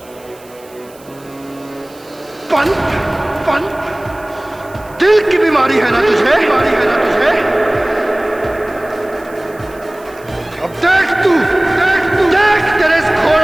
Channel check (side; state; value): right; noise; hiss, 25 dB below the sound